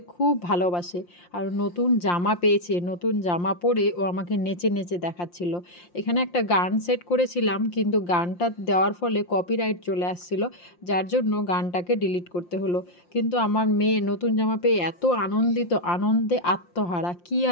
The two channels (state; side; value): late; right; 5.7 ms